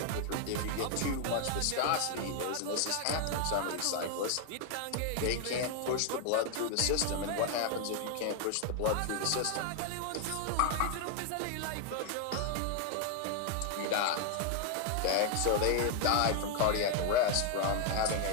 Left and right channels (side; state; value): both; different; correlation 0.00